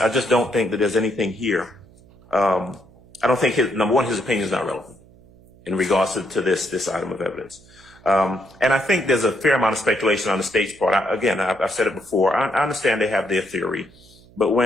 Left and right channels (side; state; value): right; noise; hum, 26 dB below the sound